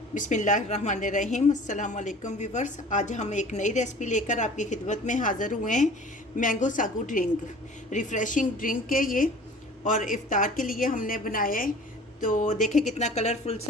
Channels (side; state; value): both; normal; correlation 0.45